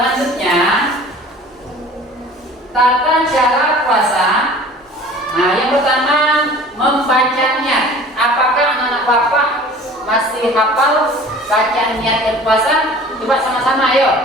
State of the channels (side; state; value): both; normal; correlation 0.45